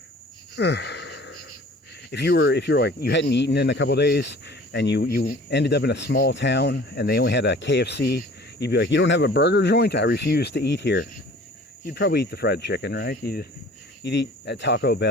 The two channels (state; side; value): normal; both; correlation 0.48